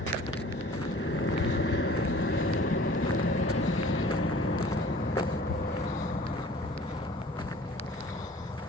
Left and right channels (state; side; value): normal; both; correlation 0.48